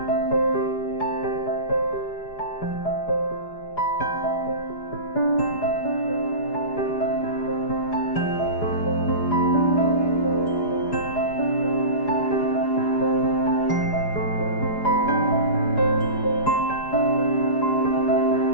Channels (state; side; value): late; right; 4.9 ms